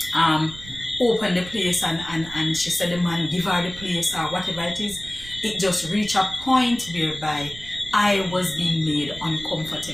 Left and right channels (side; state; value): right; noise; rumble, 15 dB below the sound